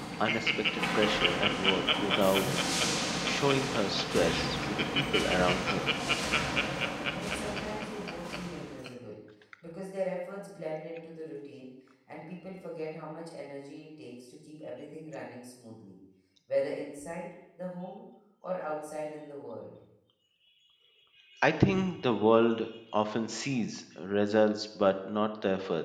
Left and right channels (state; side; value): identical; both; correlation 1.00